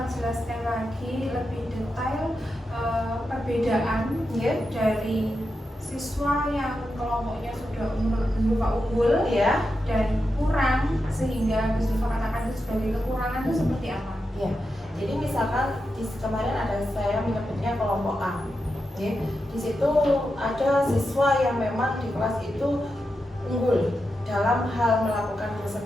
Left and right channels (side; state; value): both; normal; correlation 0.88